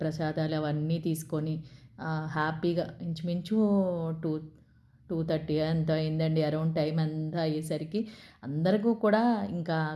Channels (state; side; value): identical; both; correlation 1.00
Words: ప్రసాదాలు అవన్నీ తీసుకొని హ్యాపీగా ఇంచుమించు 2:30 ఎంత అయిందండి. అరౌండ్ టైం అంతా అయ్యేసరికి అందరికీ కూడా ఇంకా